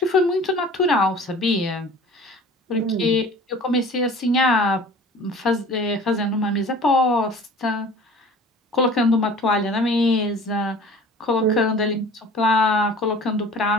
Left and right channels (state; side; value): normal; both; correlation 0.44